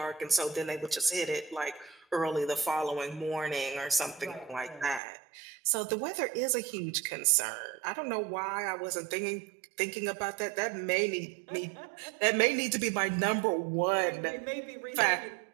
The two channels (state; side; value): drops out; left; at 5.0 s